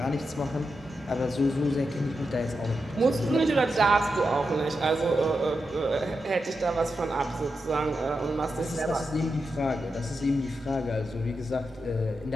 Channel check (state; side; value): normal; both; correlation 0.87